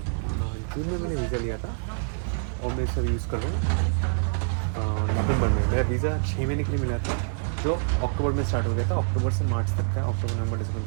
जून में मैंने वीज़ा लिया था, और मैं सब यूज़ कर रहा हूँ नवंबर में। मेरा वीज़ा 6 महीने के लिए मिला था, जो अक्टूबर में स्टार्ट हो गया था। अक्टूबर से मार्च तक का, अक्टूबर नवंबर दिसंबर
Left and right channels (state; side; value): silent; left; digital silence